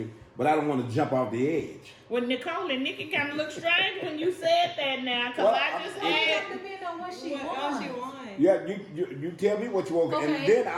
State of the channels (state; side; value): identical; both; correlation 1.00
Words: but I don't want to jump off the edge. Well, Necole and Nikki kind of look strange when you said that now, because I just had. It depends on what she wants. Yeah, you tell me what you want, okay. And then